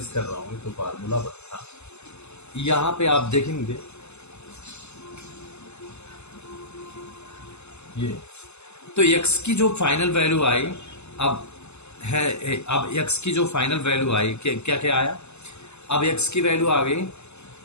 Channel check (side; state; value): right; late; 0.81 ms